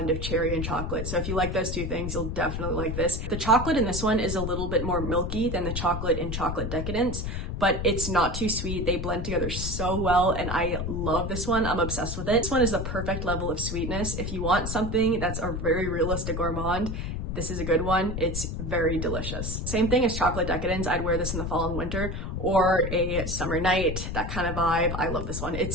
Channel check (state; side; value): noise; left; rumble, 4 dB below the sound